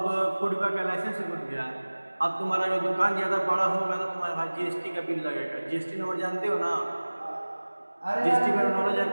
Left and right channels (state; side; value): inverted; both; correlation -1.00